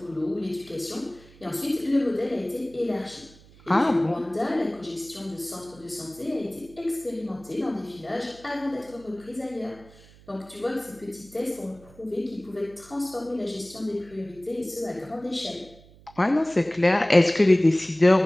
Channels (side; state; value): right; noise; hum, 24 dB below the sound